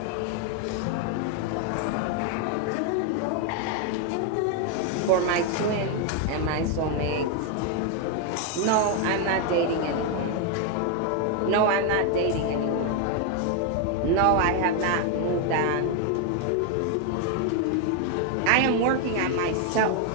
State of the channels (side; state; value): both; different; correlation 0.01